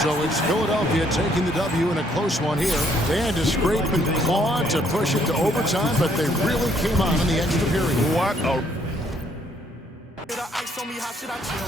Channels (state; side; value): normal; both; correlation 0.67